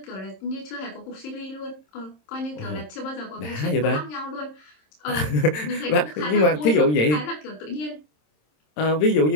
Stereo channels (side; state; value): right; late; 26 ms